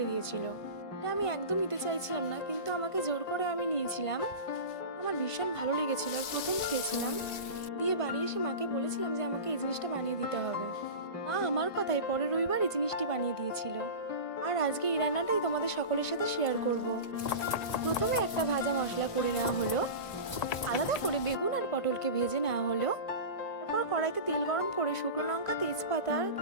দিয়েছিল। এটা আমি একদম নিতে চাইছিলাম না, কিন্তু আমাকে জোর করে আমি নিয়েছিলাম। আমার ভীষণ ভালো লেগেছিল আর প্রথম খেয়েছিলাম। দিয়ে বাড়ি এসে মাকে বলেছিলাম যে আমাকে এই জিনিসটা বানিয়ে দিতে হবে। মা আমার কথায় পরের রবিবার এই জিনিসটি বানিয়ে দিয়েছিল। আর আজকে এই রান্নাটাই তোমাদের সকলের সাথে শেয়ার করব। প্রথমে একটা ভাজা মশলা করে নেওয়া হলো। আলাদা করে বেগুন আর পটলকে ভেজে নেওয়া হলো। তারপর কড়াইতে তেল গরম করে শুকনো লঙ্কা, তেজপাতা,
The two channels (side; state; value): right; late; 1.5 ms